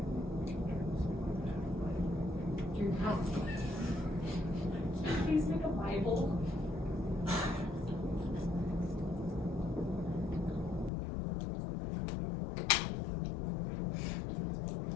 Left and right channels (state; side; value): drops out; right; at 10.9 s